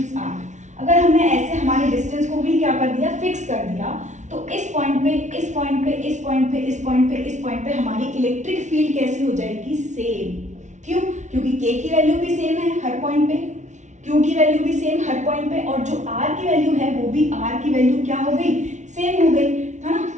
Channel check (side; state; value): left; late; 0.35 ms